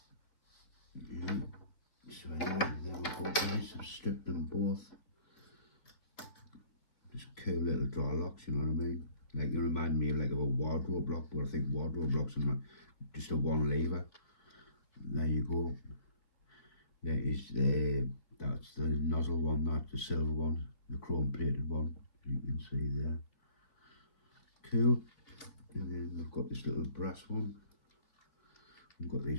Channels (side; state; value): right; late; 3.0 ms